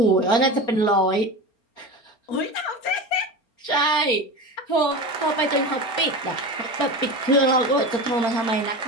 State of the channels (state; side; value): late; right; 4.3 ms